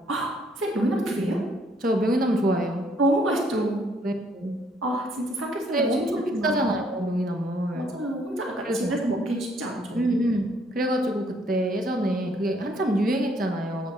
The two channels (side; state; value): both; normal; correlation 0.66